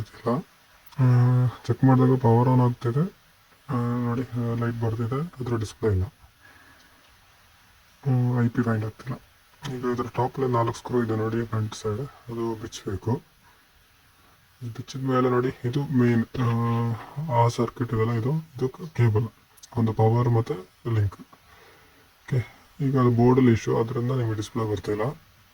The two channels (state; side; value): identical; both; correlation 1.00